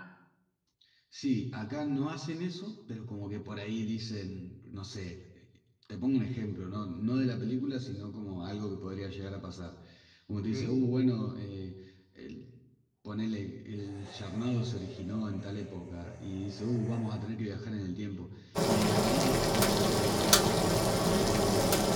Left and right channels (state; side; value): identical; both; correlation 1.00